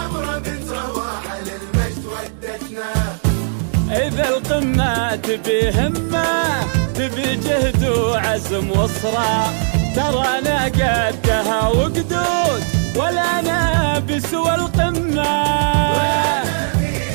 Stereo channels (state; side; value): silent; left; digital silence